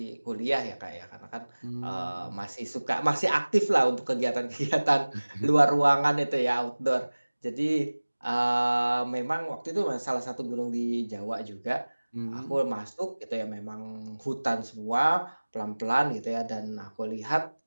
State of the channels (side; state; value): both; inverted; correlation -1.00